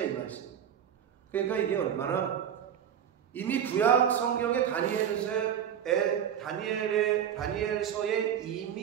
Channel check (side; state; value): left; quieter; 9.0 dB